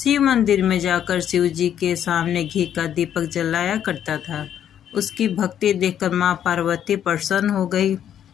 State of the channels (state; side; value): quieter; right; 9.8 dB